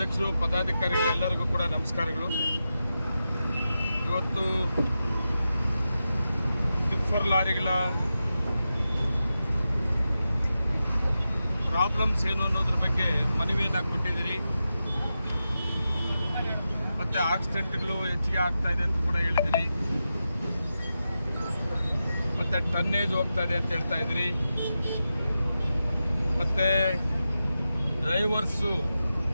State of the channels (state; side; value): inverted; both; correlation -0.90